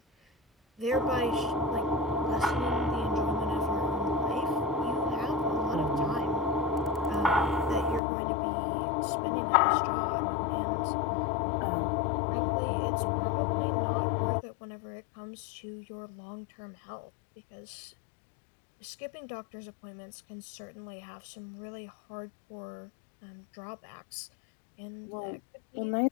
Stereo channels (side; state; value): right; drops out; at 8.0 s